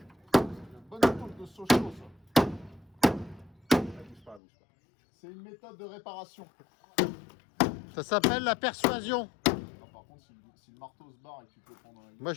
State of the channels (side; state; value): right; drops out; at 4.4 s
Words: Une bonne épaule de Sochaux ça. Bouge pas. C'est une méthode de réparation. Ça s'appelle la persuasion. Non, par contre, si le marteau se barre et que tu peux le prendre dans la gueule. Moi,